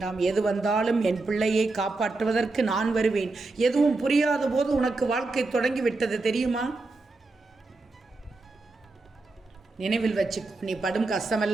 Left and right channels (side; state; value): left; quieter; 3.4 dB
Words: எது வந்தாலும் என் பிள்ளையை காப்பாற்றுவதற்கு நான் வருவேன். எதுவும் புரியாத போது உனக்கு வாழ்க்கை தொடங்கிவிட்டது தெரியுமா? நினைவில் வச்சுக்கோ. நீ படும்